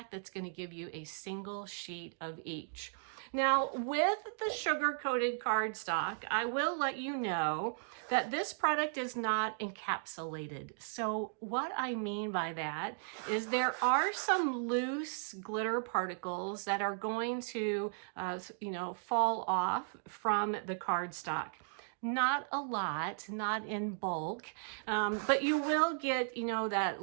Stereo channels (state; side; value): silent; left; digital silence